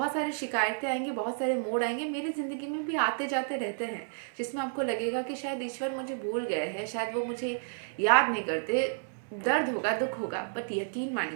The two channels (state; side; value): silent; left; digital silence